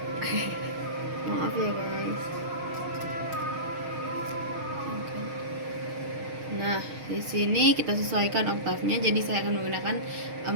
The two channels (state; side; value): late; left; 6.4 ms